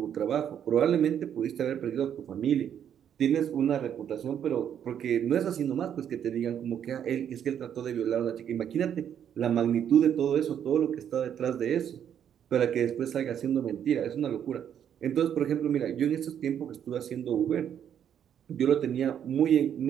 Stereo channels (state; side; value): quieter; left; 9.2 dB